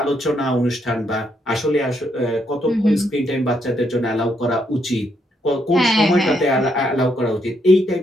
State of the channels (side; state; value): both; normal; correlation 0.76